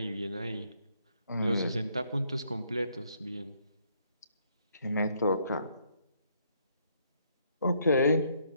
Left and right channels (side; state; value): both; inverted; correlation -0.70